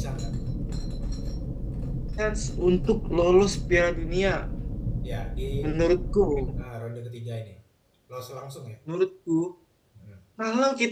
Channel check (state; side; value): identical; both; correlation 1.00